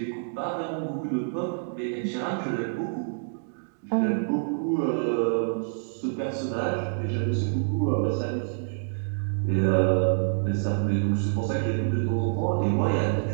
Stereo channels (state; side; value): silent; left; digital silence